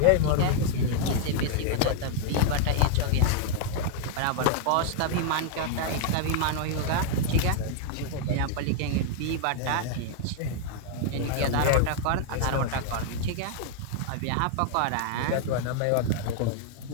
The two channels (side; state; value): both; different; correlation -0.01